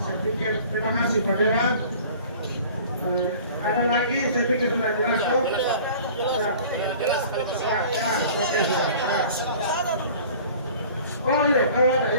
saya pikir terima kasih Pak Dewan. Ada lagi saya pikir sudah jelas kok. Oh iya, kalau ada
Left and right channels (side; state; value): both; inverted; correlation -0.46